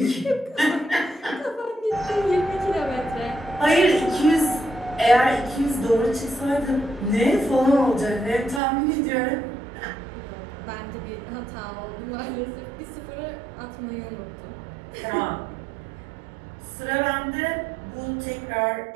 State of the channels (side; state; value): left; drops out; at 8.6 s